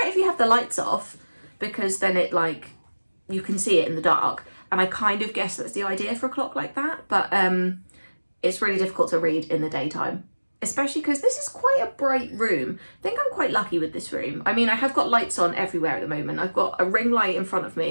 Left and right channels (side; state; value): both; inverted; correlation -1.00